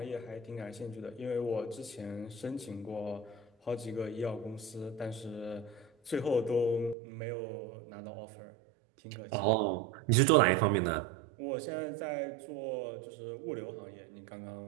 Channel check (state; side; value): drops out; left; at 7.0 s